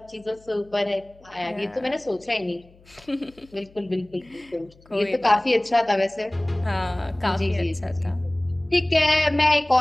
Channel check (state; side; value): noise; left; hum, 27 dB below the sound